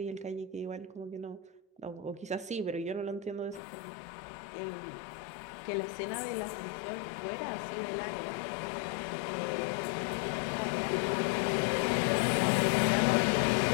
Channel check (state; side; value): drops out; right; at 3.6 s